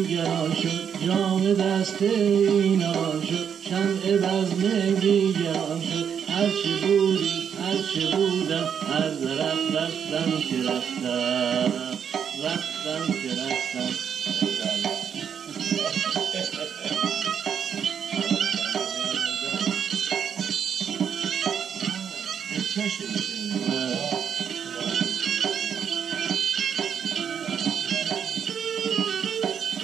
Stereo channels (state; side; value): quieter; left; 7.8 dB